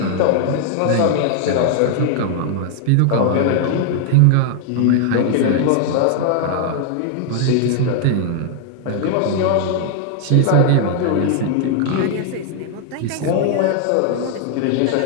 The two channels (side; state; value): both; different; correlation 0.00